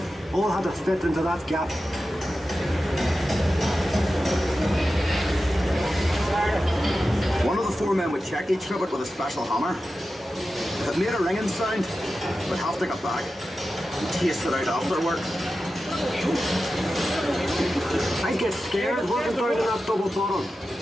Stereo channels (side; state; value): both; normal; correlation 0.92